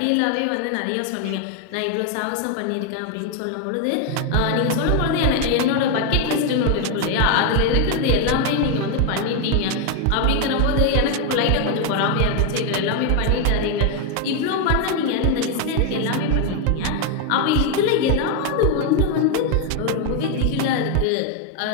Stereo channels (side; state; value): both; different; correlation 0.01